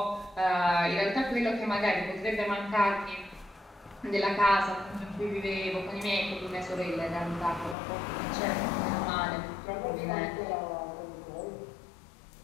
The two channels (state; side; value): drops out; right; at 7.8 s